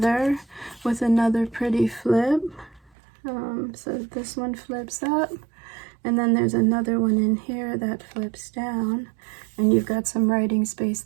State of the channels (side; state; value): left; drops out; at 2.9 s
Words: with another pretty flip. So this one flips up, and then there's another one in here that flips down, and you've got some writing space